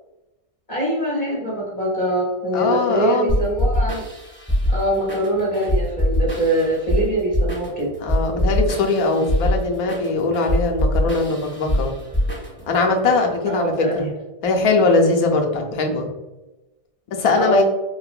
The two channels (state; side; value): late; right; 1.6 ms